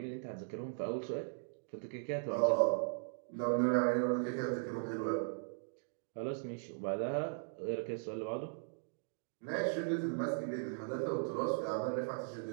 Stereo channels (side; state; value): left; silent; digital silence